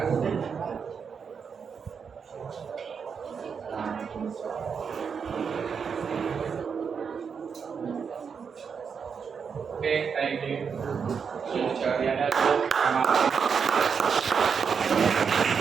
Okay, thank you. Teacher. Yeah, that's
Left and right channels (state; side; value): quieter; left; 6.3 dB